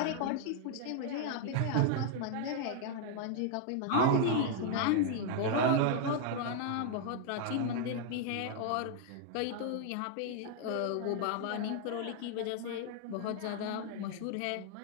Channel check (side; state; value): both; different; correlation 0.00